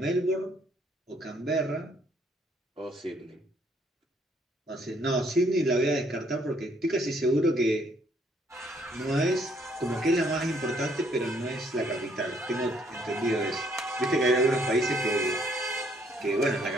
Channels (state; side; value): normal; both; correlation 0.67